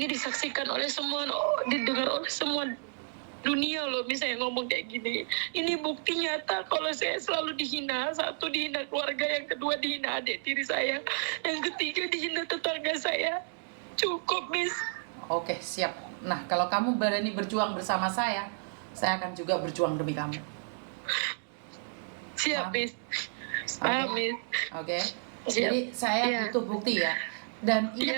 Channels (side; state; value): left; silent; digital silence